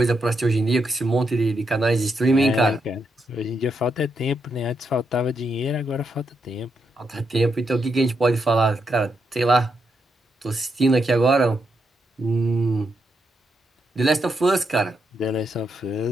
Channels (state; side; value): normal; both; correlation 0.81